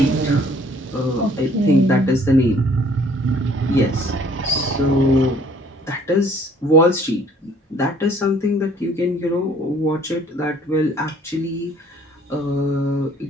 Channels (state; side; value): normal; both; correlation 0.58